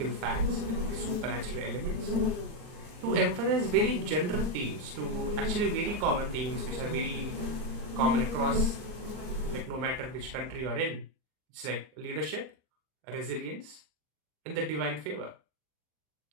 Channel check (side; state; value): left; late; 39 ms